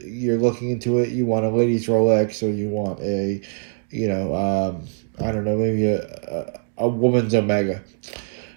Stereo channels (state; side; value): silent; left; digital silence